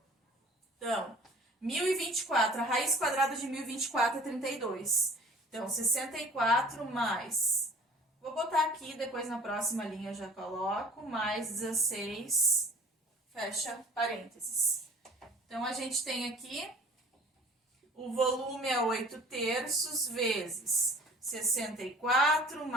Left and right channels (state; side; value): normal; both; correlation 0.49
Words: Então, 1024, a raiz quadrada de 1024 é 32. Então, 64 mais... Vou botar aqui, depois na próxima linha eu já coloco. Mais 16, fecha parênteses. Então, a gente tem aqui... O volume é 8 terços vezes 64